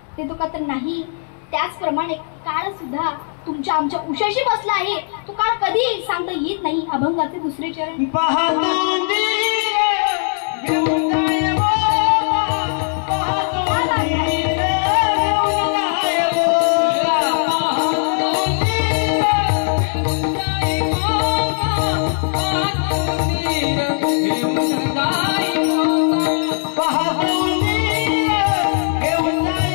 देतो का? तर नाही. त्याचप्रमाणे काळ सुद्धा तुमच्या आमच्या उशाशी बसला आहे. तो काळ कधी सांगता येत नाही. अभंगाचे दुसरे चरण. Bahadou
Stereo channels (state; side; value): silent; right; 62 dB below the other